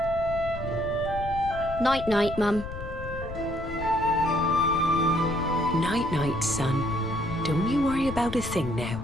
Night-night, Mum. Night-night, son. Don't you worry about a thing now.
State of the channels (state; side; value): noise; left; rumble, 10 dB below the sound